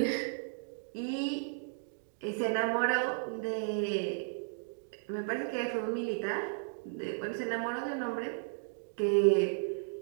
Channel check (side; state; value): left; silent; digital silence